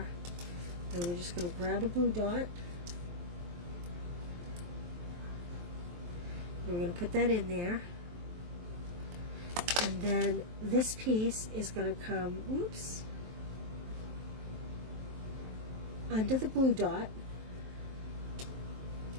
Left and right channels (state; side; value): late; left; 23 ms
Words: And we're just going to grab a glue dot. And we're going to put that in there. And then this piece is going to come, whoops, under the glue dot.